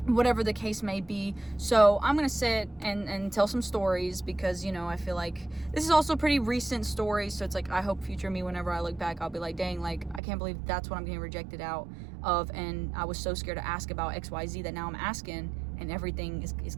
whatever the case may be. So I'm going to sit and tell some stories, because, I feel like this is also pretty recent stories. So it's like, I hope future me, whenever I look back, I'll be like, dang, like, I can't believe that's what I'm getting rejected out of. And I was so scared to ask about XYZ that now I'm asking, and everything is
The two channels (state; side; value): drops out; left; at 10.2 s